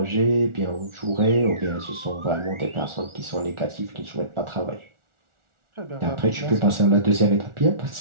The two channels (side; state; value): left; late; 1.4 ms